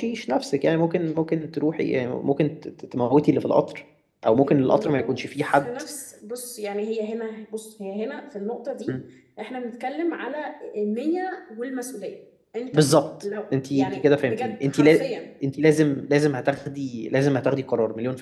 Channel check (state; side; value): identical; both; correlation 1.00